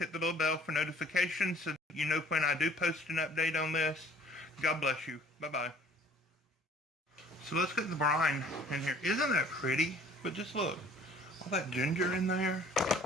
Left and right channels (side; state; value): both; normal; correlation 0.54